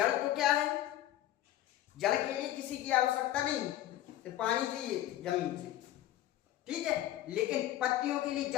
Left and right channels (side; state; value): right; quieter; 13.5 dB